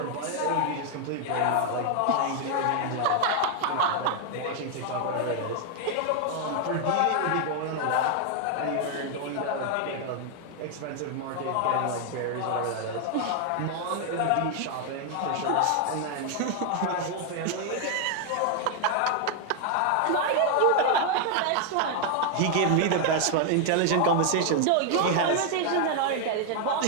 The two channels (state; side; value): different; both; correlation 0.00